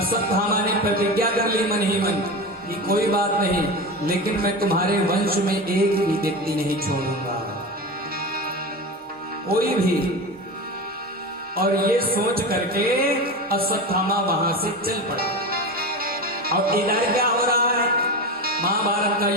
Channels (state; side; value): normal; both; correlation 0.25